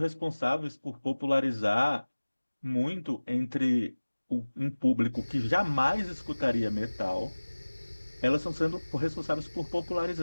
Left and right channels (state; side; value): inverted; both; correlation -1.00